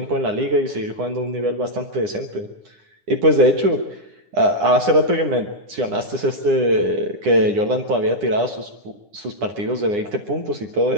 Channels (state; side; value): late; left; 9.9 ms